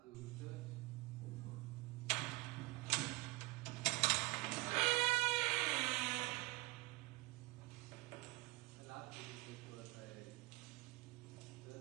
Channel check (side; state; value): left; quieter; 22.8 dB